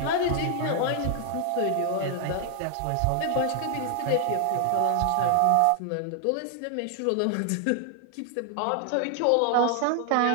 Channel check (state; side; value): different; both; correlation 0.00